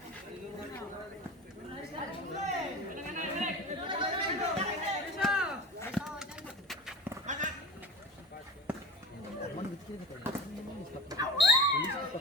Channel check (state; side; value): normal; both; correlation 0.34